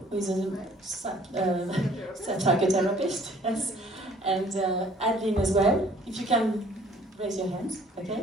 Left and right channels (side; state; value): both; normal; correlation 0.56